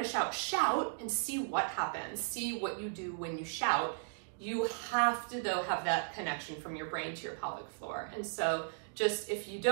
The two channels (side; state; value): left; silent; digital silence